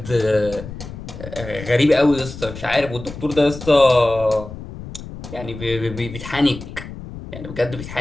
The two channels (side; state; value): left; noise; rumble, 12 dB below the sound